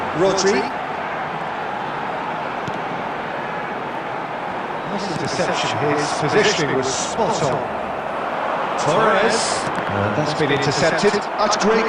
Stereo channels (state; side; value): identical; both; correlation 1.00